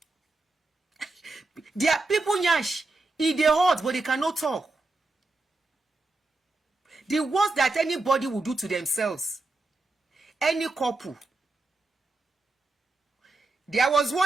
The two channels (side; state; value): left; quieter; 3.2 dB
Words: There are people nyash, they hot, but they cannot talk. The worst that anybody will do to themselves, any couple. There was